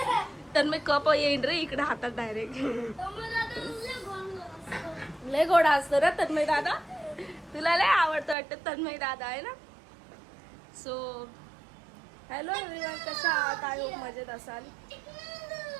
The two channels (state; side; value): drops out; left; at 8.3 s